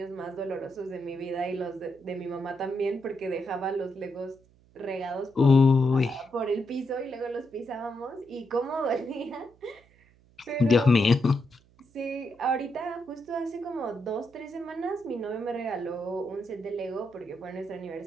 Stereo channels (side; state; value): right; noise; hum, 30 dB below the sound